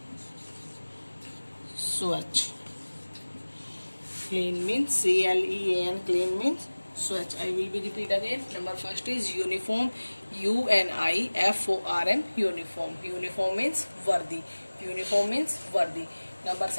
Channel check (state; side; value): inverted; both; correlation -1.00